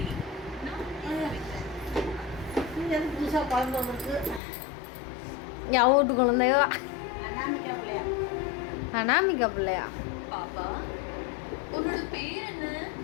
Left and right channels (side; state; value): right; drops out; at 4.4 s